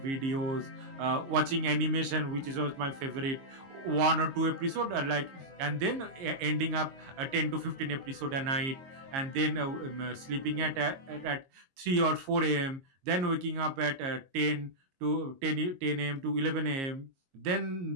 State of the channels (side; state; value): left; late; 22 ms